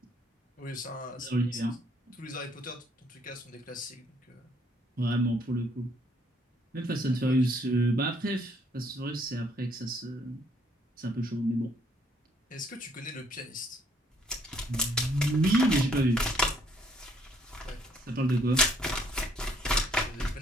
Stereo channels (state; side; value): normal; both; correlation 0.66